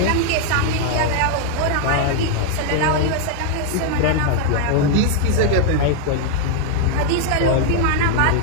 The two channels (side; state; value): both; different; correlation 0.00